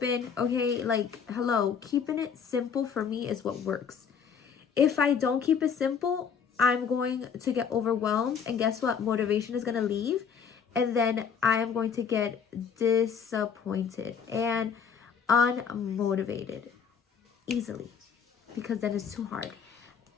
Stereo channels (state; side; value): quieter; right; 6.9 dB